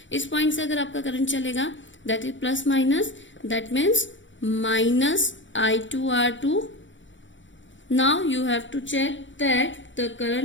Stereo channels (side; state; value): right; late; 0.55 ms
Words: इस पॉइंट से अगर आपका करंट चलेगा, that is plus minus, that means minus I2 R2. Now you have to check that the